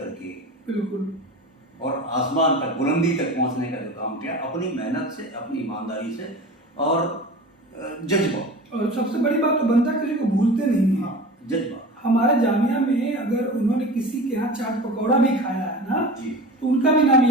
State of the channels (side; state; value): both; normal; correlation 0.34